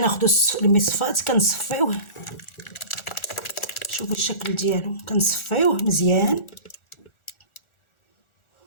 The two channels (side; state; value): right; late; 1.4 ms